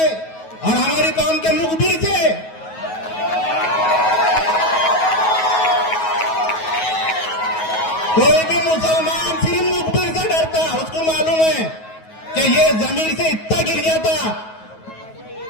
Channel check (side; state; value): right; late; 9.4 ms